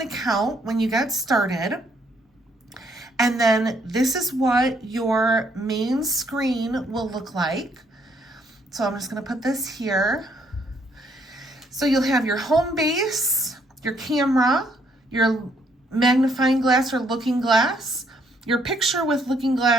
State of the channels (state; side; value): normal; both; correlation 0.69